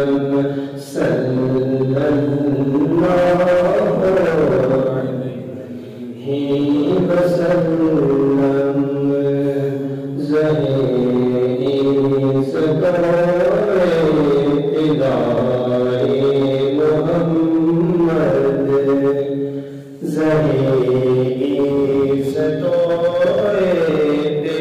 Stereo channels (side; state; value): both; identical; correlation 1.00